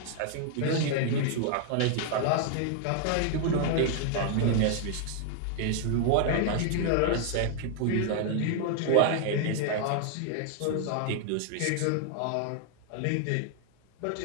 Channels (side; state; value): both; different; correlation 0.00